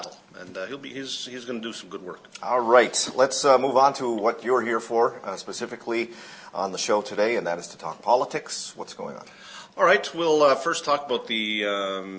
And he's going to do some good work. All right, let's move on to what you're here for, specifically on the show today, and that is to talk politics. What's going on? All right, we'll first talk about the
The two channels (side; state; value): both; identical; correlation 1.00